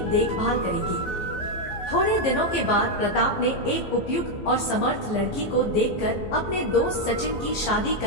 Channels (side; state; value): right; late; 15 ms